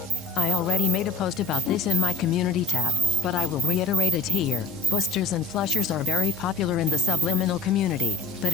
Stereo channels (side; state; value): both; normal; correlation 0.63